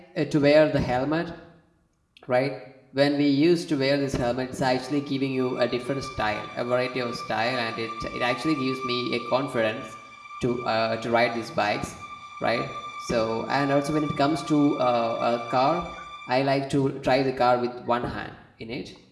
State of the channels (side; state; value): both; identical; correlation 1.00